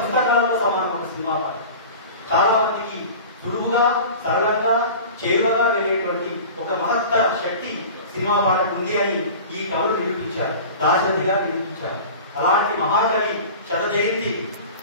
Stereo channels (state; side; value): inverted; both; correlation -0.37